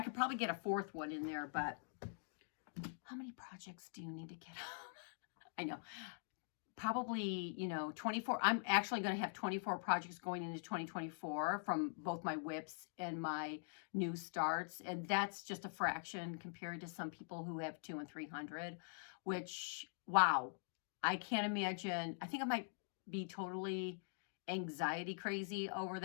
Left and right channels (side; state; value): right; silent; digital silence